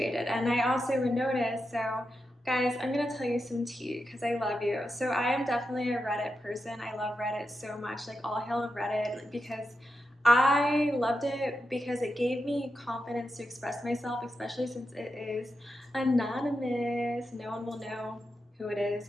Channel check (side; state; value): both; normal; correlation 0.88